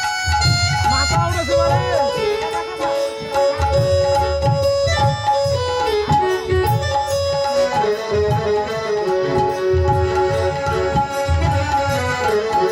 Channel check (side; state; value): both; identical; correlation 1.00